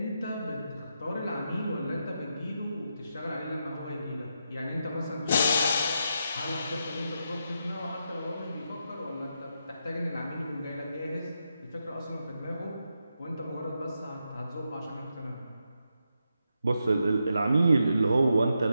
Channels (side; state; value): both; inverted; correlation -0.84